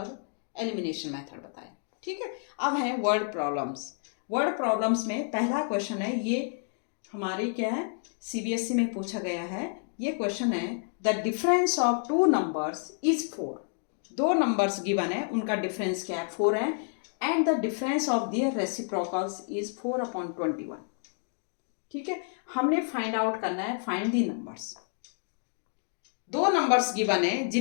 एलिमिनेशन मेथड बताया। ठीक है, अब है वर्ड प्रॉब्लम्स। वर्ड प्रॉब्लम्स में पहला क्वेश्चन है, ये हमारी क्या है, सीबीएसई में पूछा गया है। ये क्वेश्चन है, the difference of two numbers is 4। दो नंबर्स गिवन है, उनका डिफरेंस क्या है, 4 है, and the difference of their reciprocals is 4/21। ठीक है, हमने फाइंड आउट करना है, फाइंड दी नंबर्स। दो नंबर्स गिवन है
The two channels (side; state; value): right; silent; 58 dB below the other